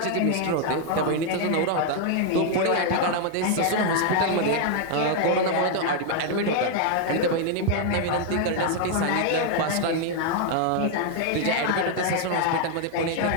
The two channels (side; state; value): both; different; correlation 0.00